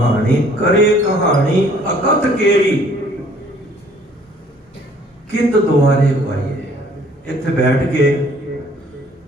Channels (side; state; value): both; normal; correlation 0.58